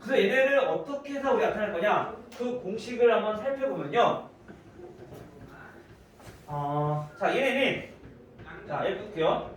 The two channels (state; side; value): identical; both; correlation 1.00